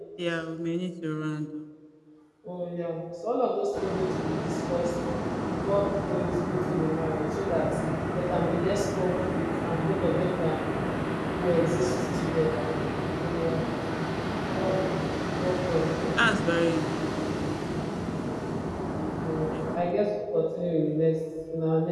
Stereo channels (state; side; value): identical; both; correlation 1.00